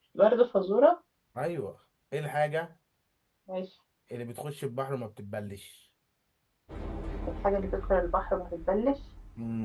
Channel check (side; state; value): both; identical; correlation 1.00